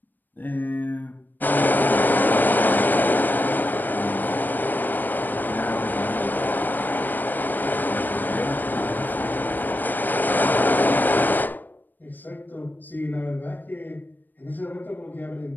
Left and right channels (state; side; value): late; right; 0.089 ms